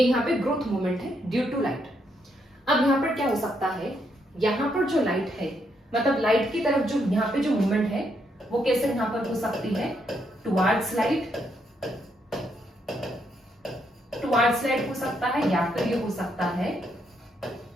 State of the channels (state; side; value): normal; both; correlation 0.76